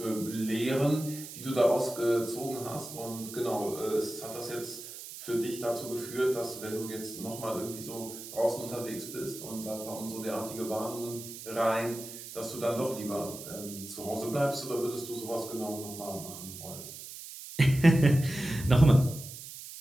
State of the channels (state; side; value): noise; right; hiss, 12 dB below the sound